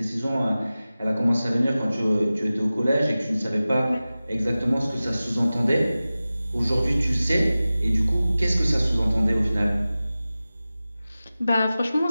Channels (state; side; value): inverted; both; correlation -0.96